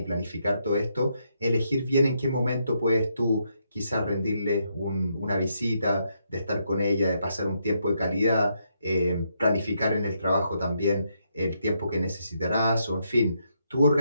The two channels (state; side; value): inverted; both; correlation -0.78